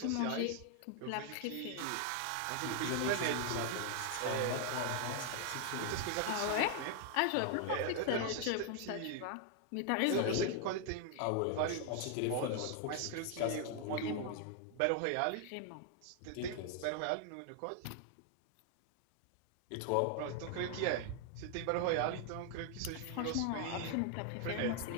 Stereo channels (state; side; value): different; both; correlation 0.00